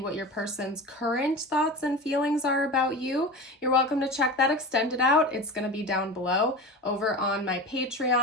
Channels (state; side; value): normal; both; correlation 0.30